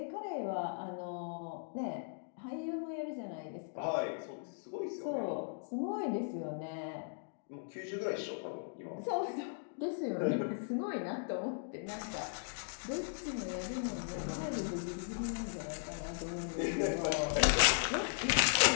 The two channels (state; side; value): silent; right; digital silence